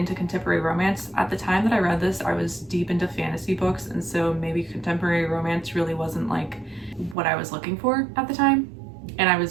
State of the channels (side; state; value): left; drops out; at 7.2 s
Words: contemporary romance. At the time that I read this, I was deep into fantasy books, and so maybe contemporary romance really wasn't like what I was looking for at the time. And I